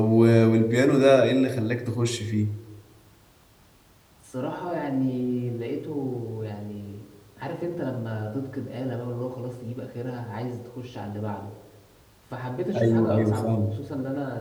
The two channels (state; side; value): identical; both; correlation 1.00